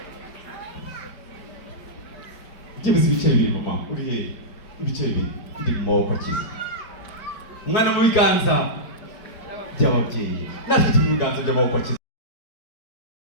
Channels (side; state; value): right; late; 4.9 ms